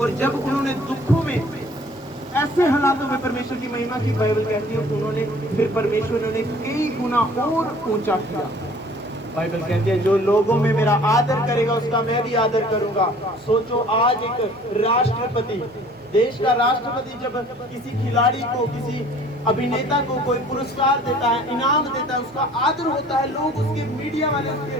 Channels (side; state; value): both; normal; correlation 0.52